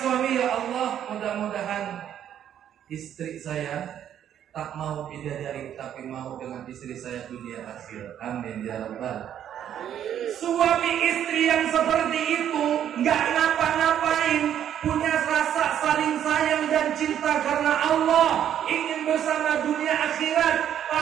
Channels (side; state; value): left; quieter; 10.1 dB